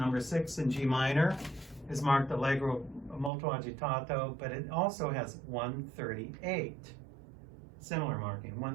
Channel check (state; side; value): drops out; left; at 3.3 s